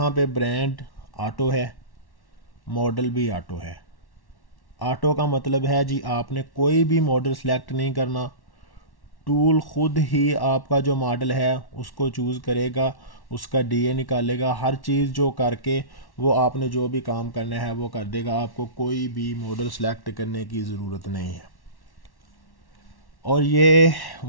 पे ब्रांड ऑटो है, मॉडल भी ऑटो है। ऑटो का मतलब है जी आपने कोई भी मॉडल सेलेक्ट नहीं करना, टूल खुद ही आपका जो मॉडल है उसको चूज़ करेगा, उसका DA निकालेगा, हर चीज़ जो करके वो आपने जो भी काम करना है वो कर देगा। आपको कोई भी मॉडल सेलेक्ट करने की ज़रूरत नहीं है। और ये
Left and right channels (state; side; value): late; right; 1.1 ms